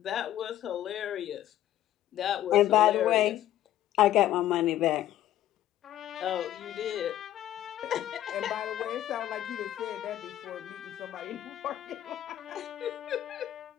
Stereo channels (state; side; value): quieter; right; 12.8 dB